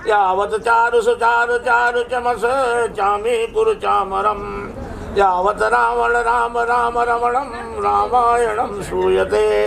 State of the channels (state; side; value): identical; both; correlation 1.00